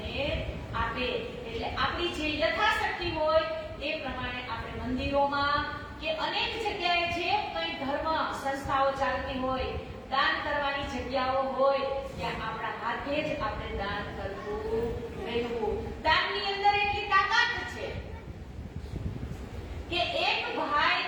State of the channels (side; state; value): both; identical; correlation 1.00